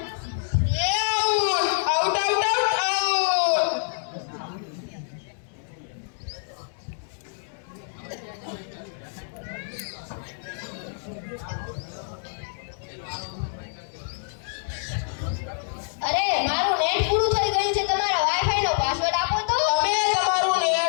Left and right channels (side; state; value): right; silent; digital silence